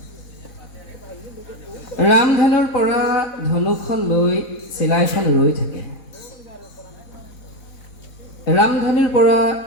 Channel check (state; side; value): late; right; 4.0 ms